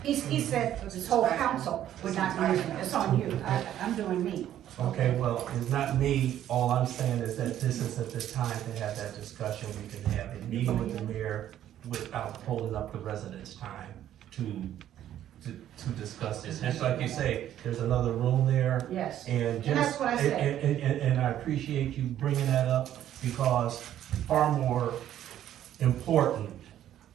he said this whole council would not be using it. It's on you. I'm doing me. Okay, well, it's not me, all I'm saying is that this isn't the time to have that discussion, we can have a meeting with the mayor without holding up the residents' time to discuss this. Just like you say, there's another room there, Yes. and just. And that's what I said. And I appreciate you bringing that up, because far more important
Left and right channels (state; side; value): quieter; left; 11.5 dB